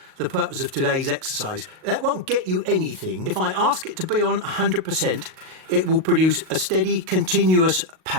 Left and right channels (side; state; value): left; late; 38 ms